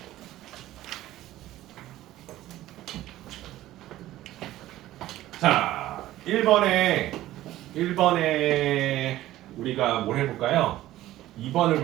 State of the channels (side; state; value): left; quieter; 14.9 dB